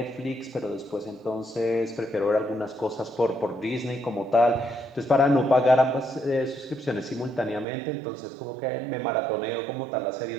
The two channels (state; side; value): drops out; left; at 7.7 s